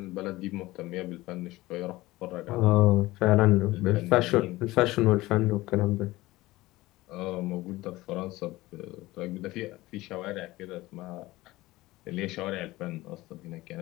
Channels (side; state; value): right; quieter; 18.7 dB